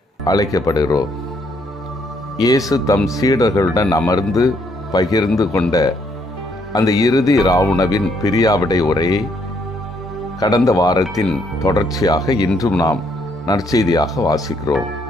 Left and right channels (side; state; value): both; normal; correlation 0.70